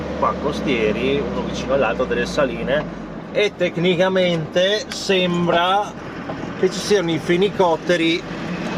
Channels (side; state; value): both; identical; correlation 1.00